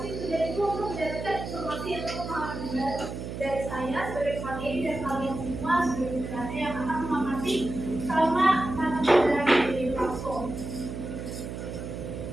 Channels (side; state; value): right; noise; hum, 7 dB below the sound